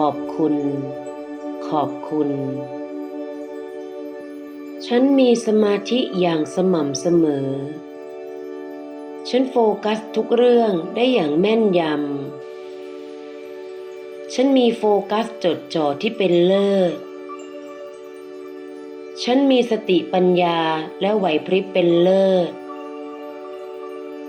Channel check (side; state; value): both; identical; correlation 1.00